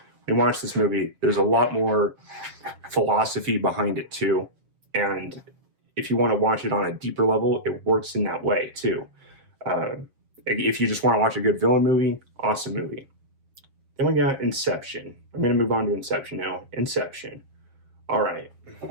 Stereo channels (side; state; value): left; late; 7.5 ms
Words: when you watch this movie, there's a lot more philosophy behind it too. And if you want to watch it on a deeper level, it works in that way too. If you just want to watch a good villain movie, awesome movie. Then we got Inception. I'm going to move on to Inception now. Inception. All right.